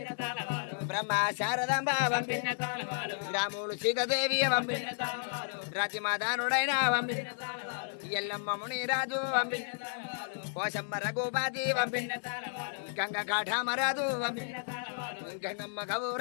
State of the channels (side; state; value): right; silent; digital silence